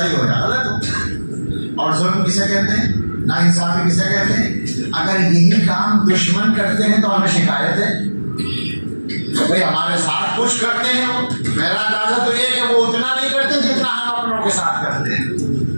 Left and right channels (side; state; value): both; inverted; correlation -1.00